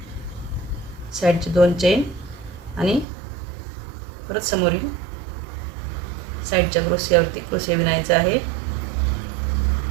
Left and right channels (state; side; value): drops out; left; at 3.1 s